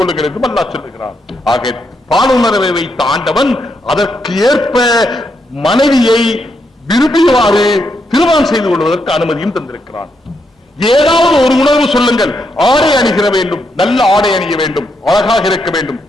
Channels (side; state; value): both; normal; correlation 0.80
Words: அல்லாஹ் சொல்லுகிறான். ஆக பாலுணர்வை வைத்த ஆண்டவன் அதற்கு ஏற்ப மனைவியை விரும்பியவாறு திருமணம் செய்து கொள்வதற்கு அனுமதியும் தந்திருக்கிறான். ஏதாவது ஒரு உணர்வு சொல்லுங்கள். ஆடை அணிகிற வேண்டும், நல்ல ஆடை அணிய வேண்டும், அழகாக இருக்க வேண்டும்.